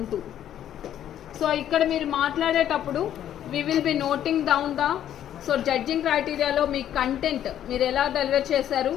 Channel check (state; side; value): quieter; right; 10.8 dB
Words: 2. So ఇక్కడ మీరు మాట్లాడేటప్పుడు we will be noting down the judging criteria లో మీ content మీరు ఎలా deliver చేశారు